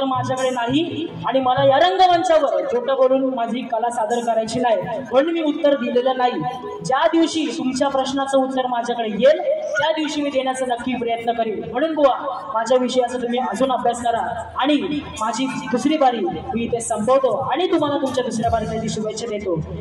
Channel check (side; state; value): both; identical; correlation 1.00